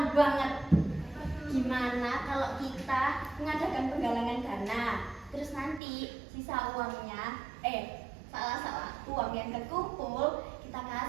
banget. Gimana kalau kita mengadakan penggalangan dana, terus nanti sisa uangnya, salah uang yang terkumpul kita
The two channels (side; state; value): left; drops out; at 5.8 s